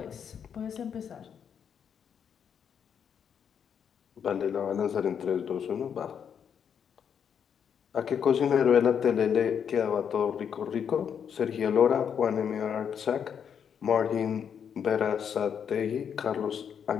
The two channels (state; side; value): quieter; right; 7.8 dB